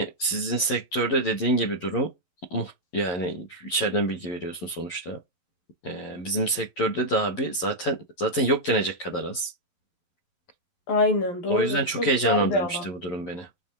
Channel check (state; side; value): late; right; 11 ms